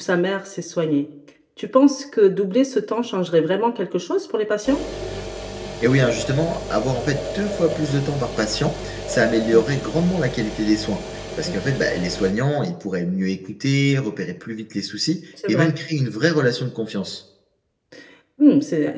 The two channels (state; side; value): identical; both; correlation 1.00